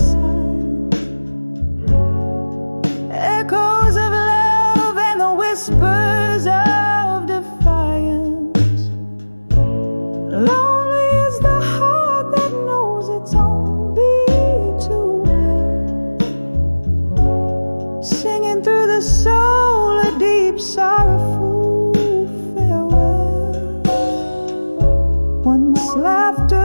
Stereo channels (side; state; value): both; inverted; correlation -1.00